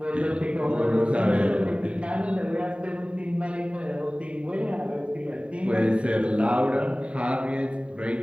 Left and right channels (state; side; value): late; left; 0.061 ms